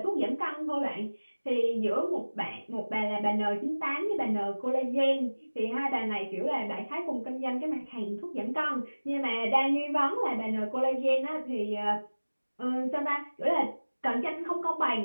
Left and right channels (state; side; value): inverted; both; correlation -1.00